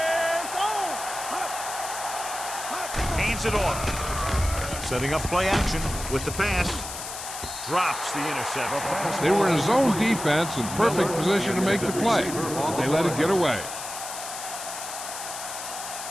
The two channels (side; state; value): left; noise; hiss, 8 dB below the sound